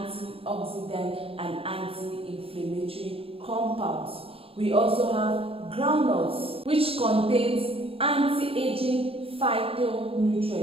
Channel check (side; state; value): left; late; 0.27 ms